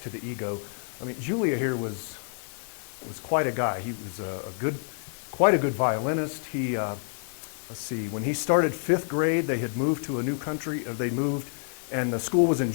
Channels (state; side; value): silent; right; 59 dB below the other